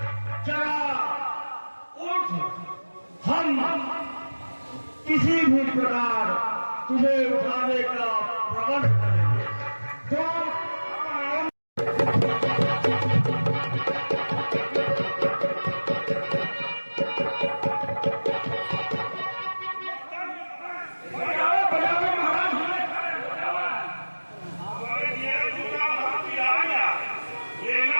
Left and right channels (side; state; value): both; inverted; correlation -1.00